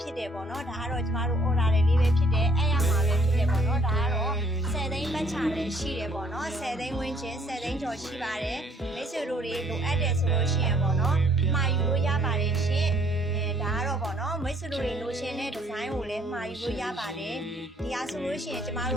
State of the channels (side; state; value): both; normal; correlation 0.62